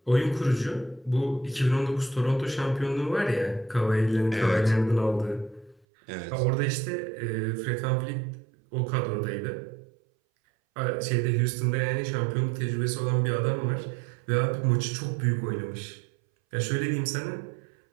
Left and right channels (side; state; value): left; drops out; at 5.9 s